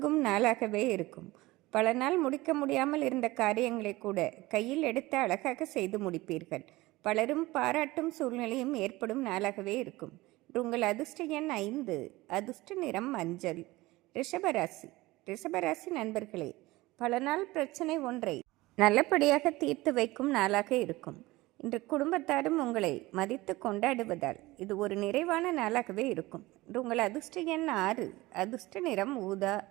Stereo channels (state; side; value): quieter; left; 19.7 dB